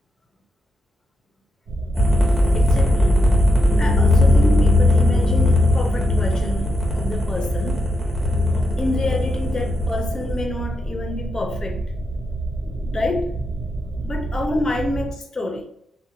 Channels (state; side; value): normal; both; correlation 0.84